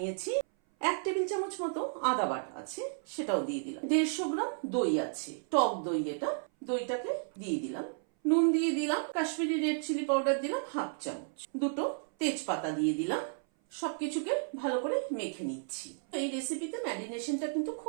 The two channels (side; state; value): left; silent; 56 dB below the other